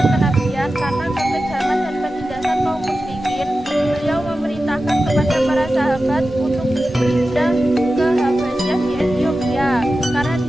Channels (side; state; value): both; normal; correlation 0.93